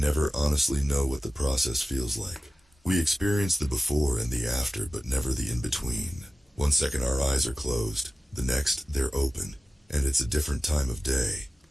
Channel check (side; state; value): both; normal; correlation 0.95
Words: honestly know what the process feels like. We experience the before and the after, but never the in-between. One second our eyes are closed, the next they're open, and it's a different time of day.